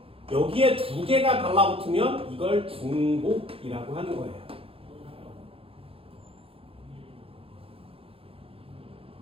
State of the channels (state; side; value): late; left; 0.27 ms